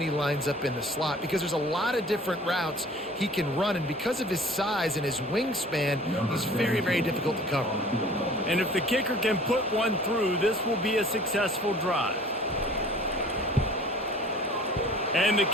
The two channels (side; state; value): both; normal; correlation 0.48